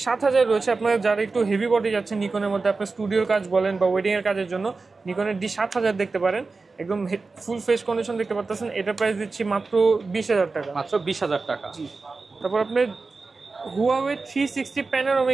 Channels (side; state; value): left; quieter; 4.0 dB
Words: রয়েছে, আপনার যারা একটু হেভি বডি যাচ্ছেন নিকনের মধ্যে, আপনার স্টুডিওর কাজ বলেন বা ওয়েডিং এর কাজের জন্য, নিকনের D7000 দেখতে পারেন, একদম ফুল ফ্রেশ কন্ডিশন দেখতে পাচ্ছেন। এটার প্রাইস দিচ্ছি মাত্র 20000 টাকা। মাত্র 20000 টাকা। জি। তারপর আপনার হুয়াওয়ে 360